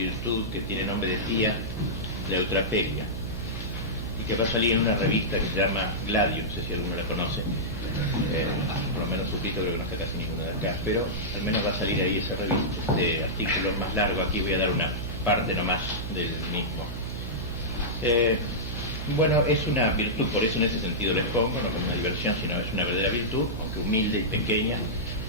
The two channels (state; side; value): noise; right; hum, 6 dB below the sound